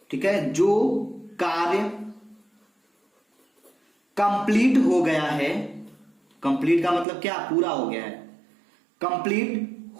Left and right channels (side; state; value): left; drops out; at 7.1 s